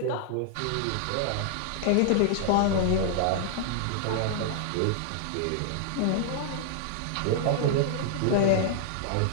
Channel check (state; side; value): different; both; correlation -0.01